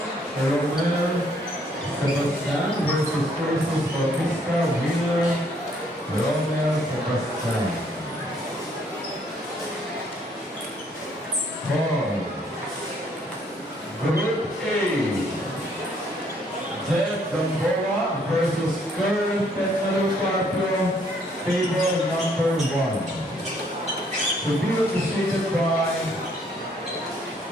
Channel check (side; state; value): both; normal; correlation 0.66